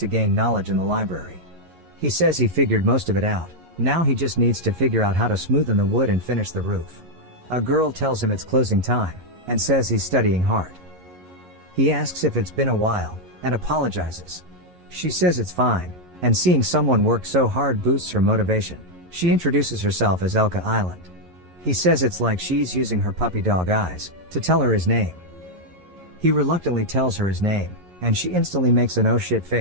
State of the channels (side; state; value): left; late; 11 ms